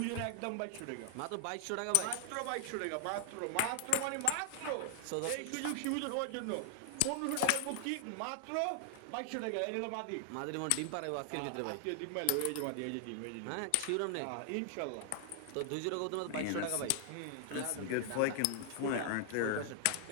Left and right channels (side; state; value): both; different; correlation 0.00